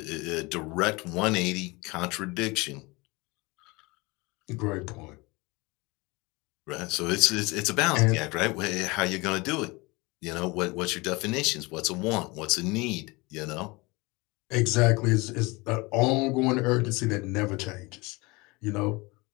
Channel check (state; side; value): quieter; right; 24.9 dB